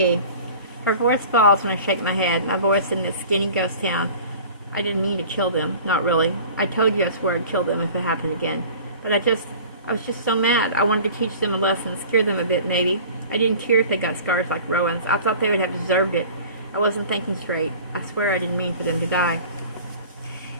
Her voice falls when I shake my head. My voice in this skinny ghost town. I didn't mean to kill them. Not really. I told you I swore I'd kill them if it happened again. But I was just so mad. I wanted to teach them a lesson, scare them a bit, maybe. I didn't care if they got scars like Rowan's. I thought they would have deserved it. I wasn't thinking straight. I swear I didn't mean for them to die.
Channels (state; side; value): inverted; both; correlation -0.43